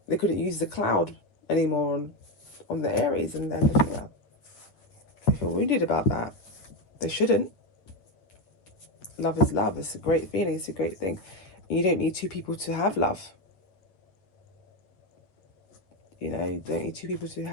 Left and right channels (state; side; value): late; right; 9.5 ms